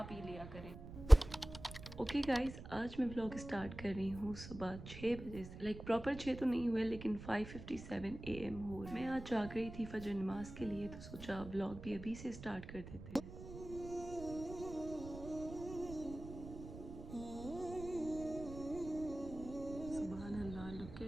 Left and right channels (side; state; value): right; noise; rumble, 12 dB below the sound